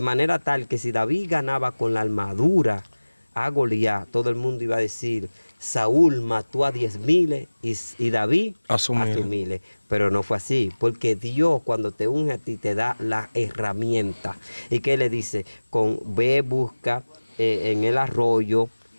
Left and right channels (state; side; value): inverted; both; correlation -1.00